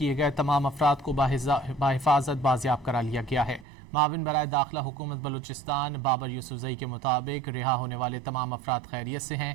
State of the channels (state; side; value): drops out; left; at 3.7 s